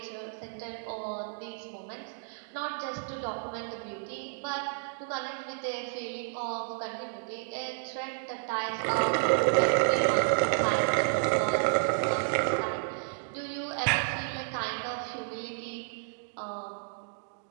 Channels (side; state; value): left; silent; digital silence